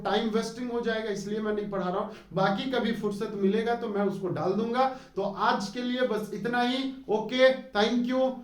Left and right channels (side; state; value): both; identical; correlation 1.00